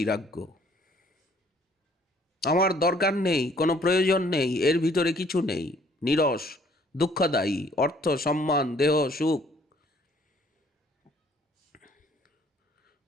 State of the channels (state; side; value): normal; both; correlation 0.60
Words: আমার দরকার নেই, কোনো প্রয়োজন নেই, এর ভিতরে কিছু নেই, নীরস, দুঃখদায়ী, অর্থ সম্মান দেহ সুখ।